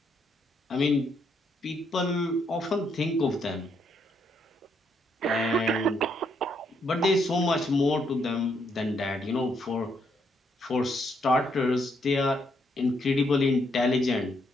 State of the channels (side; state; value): both; normal; correlation 0.75